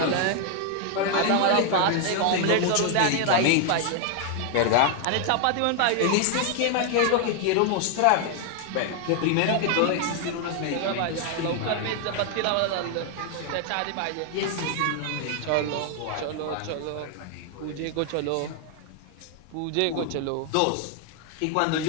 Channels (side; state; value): both; different; correlation 0.00